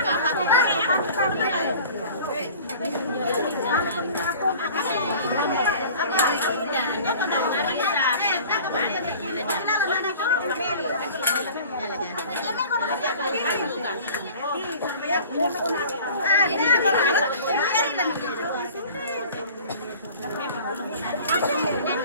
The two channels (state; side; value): inverted; both; correlation -0.44